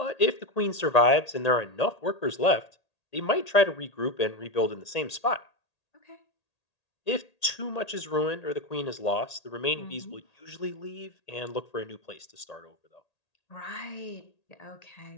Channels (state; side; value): late; right; 1.8 ms